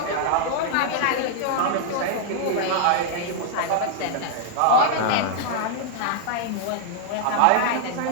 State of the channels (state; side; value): different; both; correlation 0.00